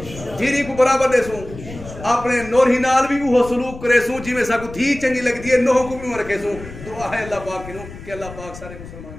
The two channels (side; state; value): left; noise; rumble, 14 dB below the sound